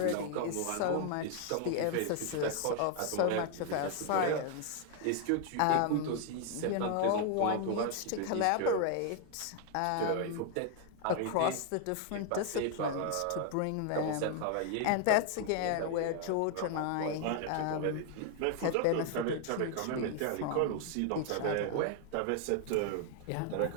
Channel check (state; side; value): different; both; correlation 0.00